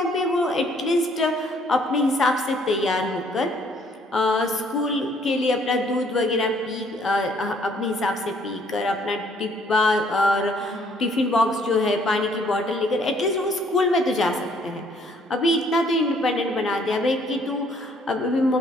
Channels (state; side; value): normal; both; correlation 0.64